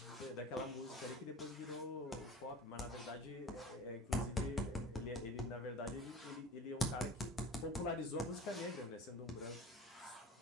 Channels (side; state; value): both; normal; correlation 0.38